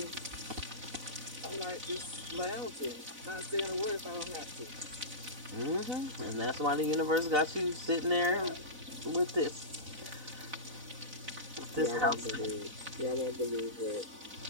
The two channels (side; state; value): left; late; 4.0 ms